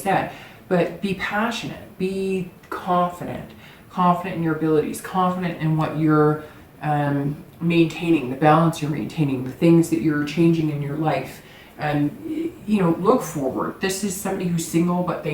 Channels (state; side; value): identical; both; correlation 1.00